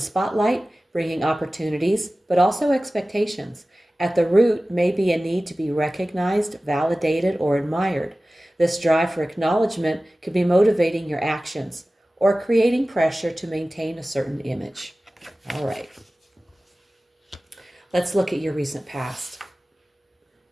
bringing opportunities, but also expectations. At the root may be a need to be recognized, validated, or admired. This drive for acknowledgement could be motivating your actions or creating pressure to maintain a certain image. All right. Let's look at your recent past.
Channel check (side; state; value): both; normal; correlation 0.97